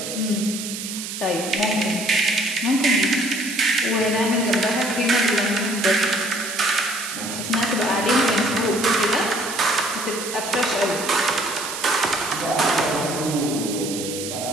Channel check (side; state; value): right; noise; hiss, 7 dB below the sound